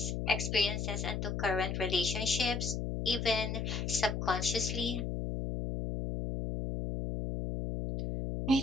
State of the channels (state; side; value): noise; left; hum, 2 dB below the sound